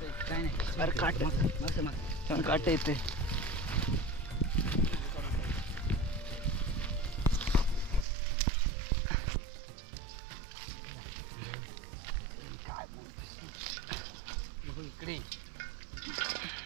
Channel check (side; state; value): left; drops out; at 8.1 s